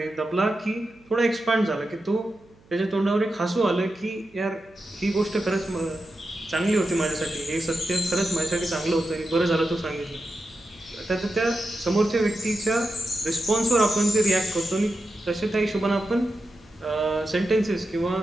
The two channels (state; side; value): noise; right; hum, 29 dB below the sound